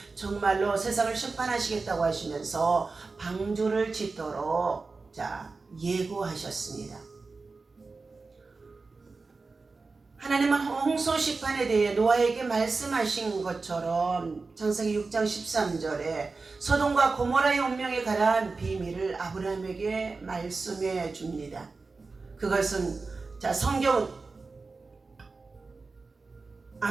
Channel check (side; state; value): left; quieter; 4.0 dB